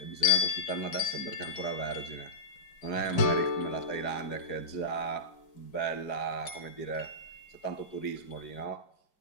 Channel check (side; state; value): right; late; 4.9 ms